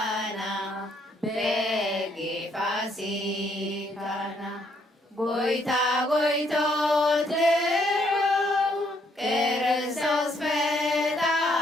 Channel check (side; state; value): both; normal; correlation 0.70